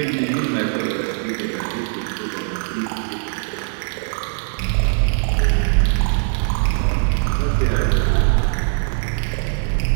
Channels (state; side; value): silent; left; 59 dB below the other